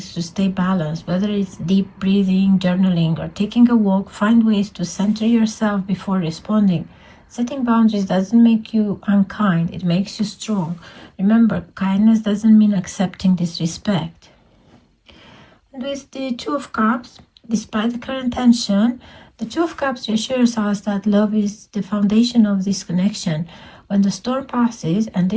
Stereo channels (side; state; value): both; identical; correlation 1.00